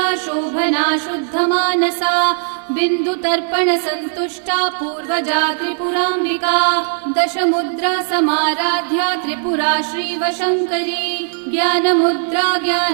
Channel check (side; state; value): left; silent; 67 dB below the other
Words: शोभना शुद्धमानसा बिन्दुतर्पण संतुष्टा पूर्वजा त्रिपुराम्बिका दशमुद्रा समाराध्या त्रिपुरा श्रीवशङ्करी ज्ञानमुद्रा